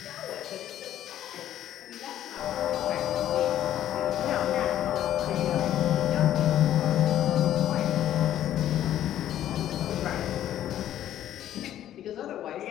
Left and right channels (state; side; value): quieter; right; 11.9 dB